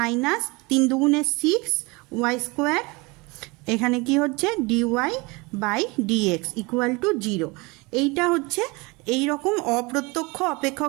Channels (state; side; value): quieter; left; 25.9 dB